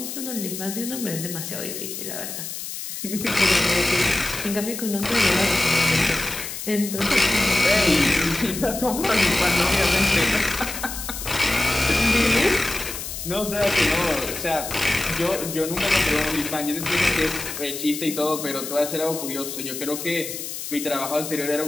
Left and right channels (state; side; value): noise; left; hiss, 7 dB below the sound